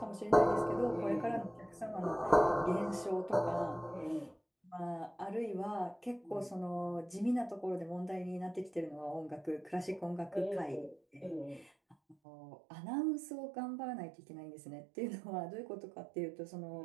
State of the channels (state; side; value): drops out; left; at 12.2 s